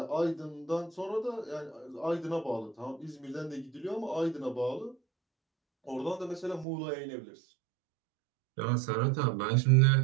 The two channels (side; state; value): left; drops out; at 6.7 s